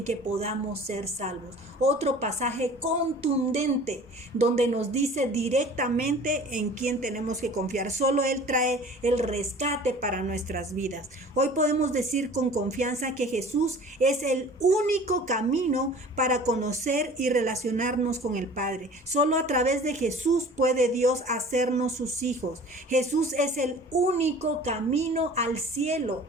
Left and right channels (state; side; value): normal; both; correlation 0.45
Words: que podamos ser salvos. Otro pasaje contundente donde nos dice directamente en quién tenemos que confiar. Solo Él trae el rescate para nuestras vidas. Hoy podemos decir con confianza que Jesús es el único camino para conocer y relacionarnos con el Padre. Solo a través de Jesús puede Dios hacernos sus hijos. Jesús es el único camino al cielo.